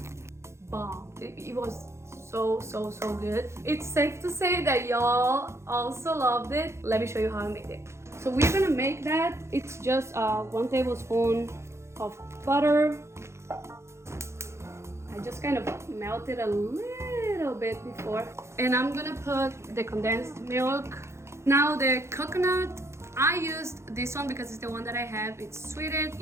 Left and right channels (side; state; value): left; late; 0.13 ms